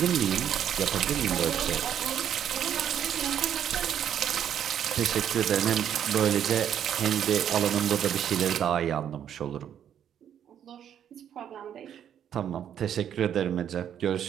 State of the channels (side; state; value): left; quieter; 9.5 dB